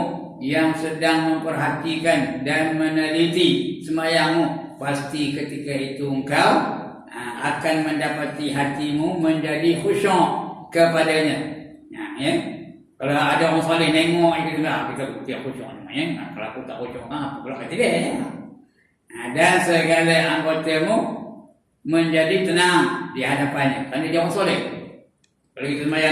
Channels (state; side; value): identical; both; correlation 1.00